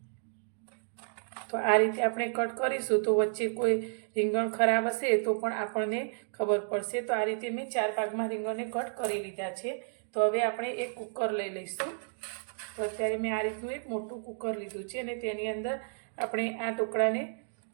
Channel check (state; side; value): silent; left; digital silence